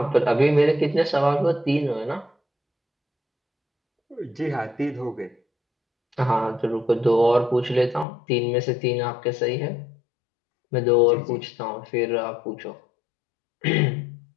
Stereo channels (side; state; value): right; drops out; at 8.1 s